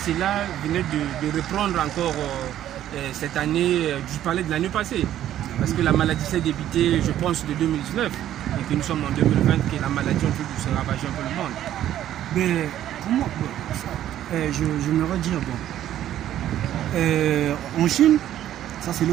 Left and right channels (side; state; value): left; quieter; 12.0 dB